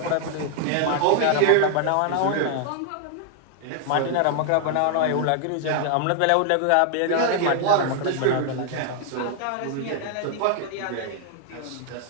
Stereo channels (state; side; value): different; both; correlation 0.00